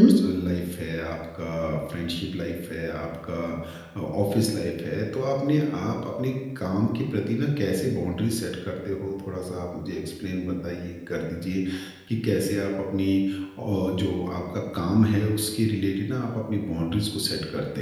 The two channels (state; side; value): identical; both; correlation 1.00